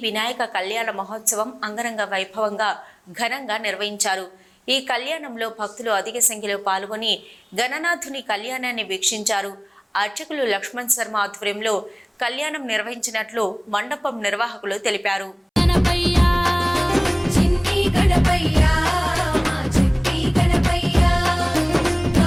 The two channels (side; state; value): both; identical; correlation 1.00